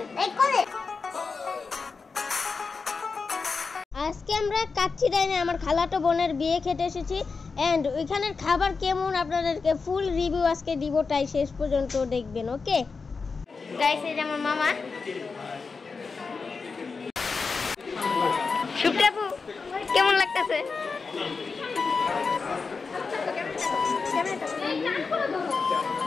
আজকে আমরা কাচ্চিডাইনে আমার খালাতো বোনের বিয়ে খেতে এসেছি এন্ড ওইখানের খাবার কেমন আপনাদেরকে ফুল রিভিউ আজকে দিব, তাই শেষ পর্যন্ত দেখবেন। ওকে গাইস, এই যে আমার মামা শুক্রাপু, কেমন লাগতেছে?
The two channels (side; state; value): right; quieter; 4.7 dB